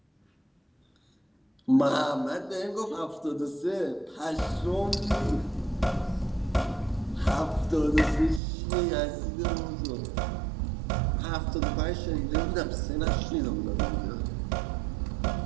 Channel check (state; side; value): drops out; left; at 8.4 s